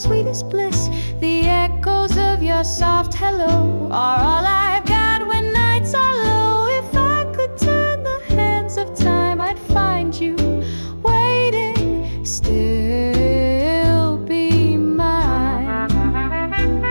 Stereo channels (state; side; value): inverted; both; correlation -1.00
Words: bliss. The echoes of your soft hello are all I've got when nights are low. If I could turn the hands of time, I'd find you waiting, still be mine.